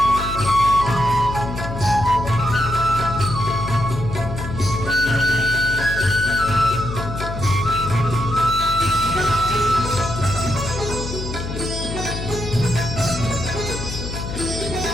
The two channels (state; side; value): noise; left; hum, 6 dB below the sound